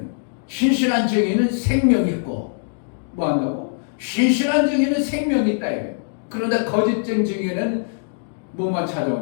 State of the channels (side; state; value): right; silent; digital silence